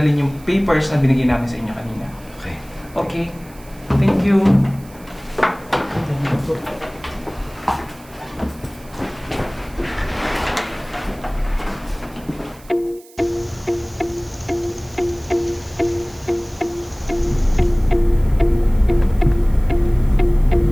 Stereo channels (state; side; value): noise; right; hiss, 24 dB below the sound